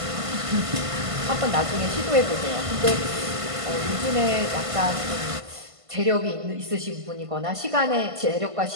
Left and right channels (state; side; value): late; left; 1.5 ms